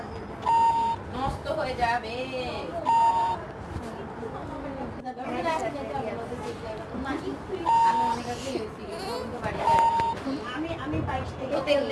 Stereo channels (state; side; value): identical; both; correlation 1.00